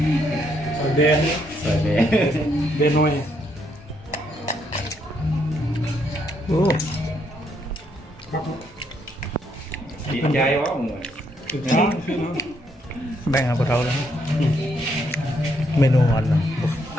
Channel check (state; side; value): normal; both; correlation 0.74